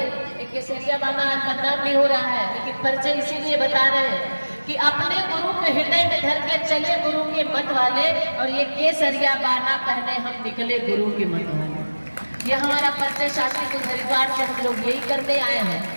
एक सरिया बाना बदनाम नहीं हो रहा है, लेकिन परिचय इसीलिए बता रहे हैं कि अपने गुरु के हृदय में धर के चले गुरु के मत वाले, और ये केसरिया बाना पहने हम निकले गुरु के मत वाले। ये हमारा परिचय शास्त्री कुल हरिद्वार से हम लोग यही करते आए हैं।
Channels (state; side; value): inverted; both; correlation -1.00